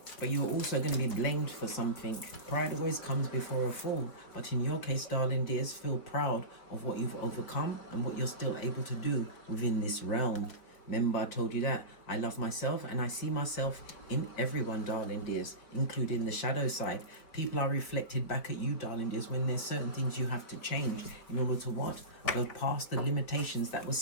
But you're also going to be blamed for something. Pride always comes before a fall. But in your case, darling dears, feel proud of what you've overcome and what you're still able to do within this realm. Remember, I told you that I love myself and I see myself in everyone, darling dears, including the shadow side. People are reflected back at you, darling dears, when there's certain things you have to change in order to what? Go past the limitations that was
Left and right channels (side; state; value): right; late; 4.4 ms